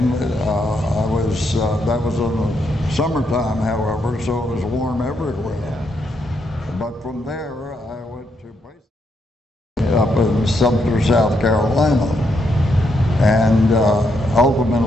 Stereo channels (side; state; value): both; normal; correlation 0.78